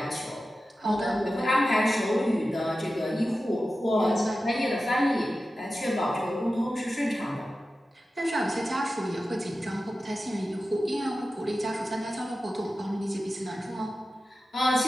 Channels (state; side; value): normal; both; correlation 0.93